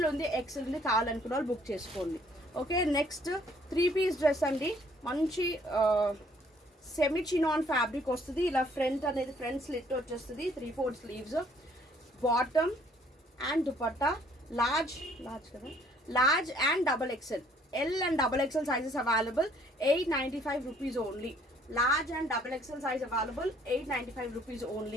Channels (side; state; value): both; normal; correlation 0.62